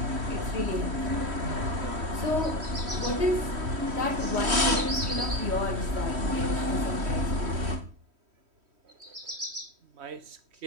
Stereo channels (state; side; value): late; left; 3.1 ms